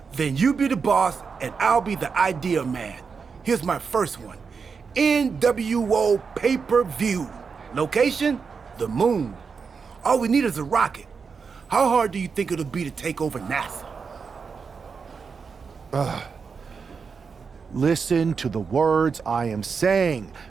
Then you be the boss, and I'll be the idea man. Here's my first one. NWO pay-per-view. Location? The moon. All we need is a rocket. How hard do you think it'll be to take over NASA? Listen to the words I am saying.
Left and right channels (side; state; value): left; quieter; 5.5 dB